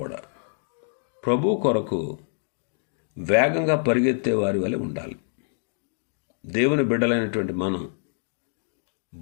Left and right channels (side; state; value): right; silent; 61 dB below the other